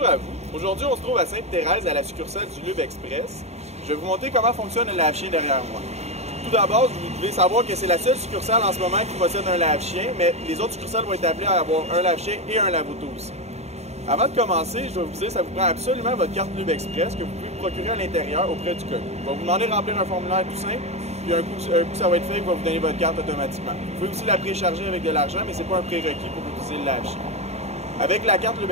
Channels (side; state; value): left; late; 0.31 ms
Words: à vous. Aujourd'hui, on se trouve à Sainte-Thérèse à la succursale du Lube Express. Je vais vous montrer comment fonctionne le lave-chien derrière moi. Tout d'abord, vous devez savoir que c'est la seule succursale en ce moment qui possède un lave-chien, mais les autres succursales vont être appelées à avoir un lave-chien et un lave-auto aussi. Avant de commencer, je vais vous dire que ça vous prend absolument votre carte Lube Express que vous pouvez procurer à l'intérieur auprès du commis. On va vous demander de remplir un formulaire tout simple, puis un coup ça va être fait, il va vous donner votre carte automatiquement. Vous pouvez aussi la précharger avec de l'argent, mais ce n'est pas un prérequis pour utiliser le lave-chien. Avec la carte Lube